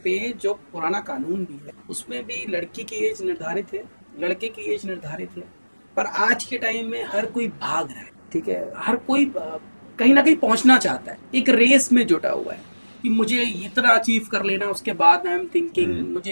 पे जो पुराना कानून भी है उसमें भी लड़की की एज निर्धारित है, लड़के की एज निर्धारित है। पर आज के टाइम में हर कोई भाग रहा है, ठीक है, हर कोई कहीं ना कहीं पहुंचना चाहता है, एक रेस में जुटा हुआ है कि मुझे इतना अचीव कर लेना, उसके बाद आई एम थिंकिंग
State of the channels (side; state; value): both; inverted; correlation -1.00